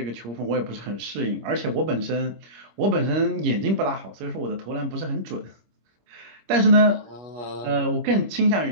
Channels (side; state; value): left; late; 25 ms